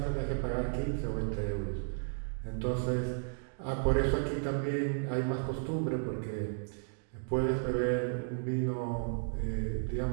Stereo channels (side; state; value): left; silent; digital silence